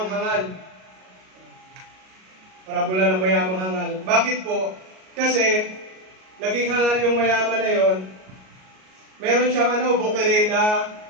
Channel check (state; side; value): late; left; 38 ms